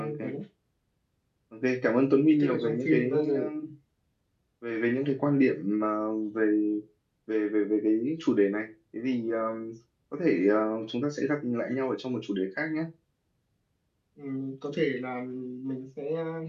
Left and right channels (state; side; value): identical; both; correlation 1.00